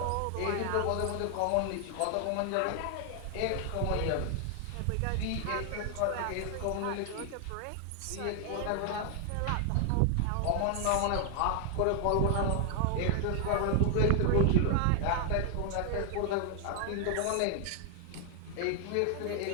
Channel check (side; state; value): both; different; correlation 0.00